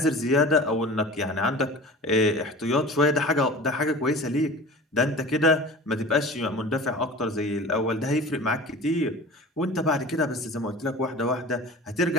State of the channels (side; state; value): both; normal; correlation 0.38